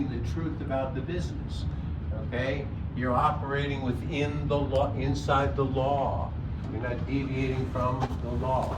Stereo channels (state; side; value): identical; both; correlation 1.00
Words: the truth about the business, okay? You're operating within the law, inside the law. You're not deviating from the law.